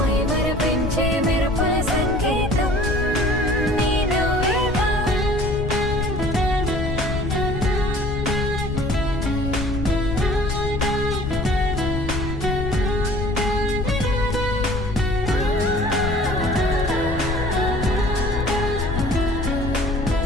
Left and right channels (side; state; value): left; noise; rumble, 4 dB below the sound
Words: మెరుపుల సంగీతం నీ నువ్వేగా